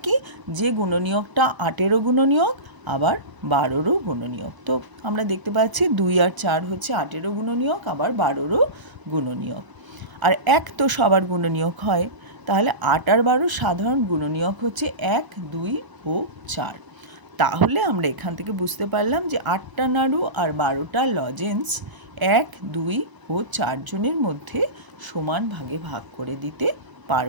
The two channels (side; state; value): left; late; 1.0 ms